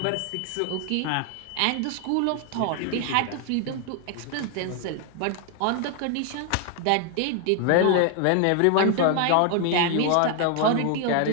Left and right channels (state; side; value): different; both; correlation 0.00